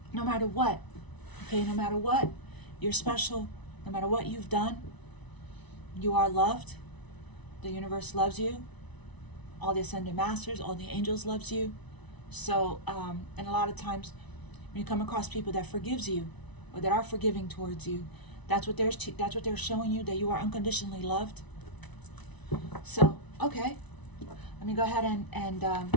no matter what, okay? No matter what, you're special. No matter what you've done, you are loved. The universe loves you. All the ascended masters, all the angels loves you. So, and a lot of times when you come across people that forgives you or that are forgiving towards you, that's what they're showing you, that you are unconditionally loved. So, okay, let me go ahead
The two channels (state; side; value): late; right; 1.0 ms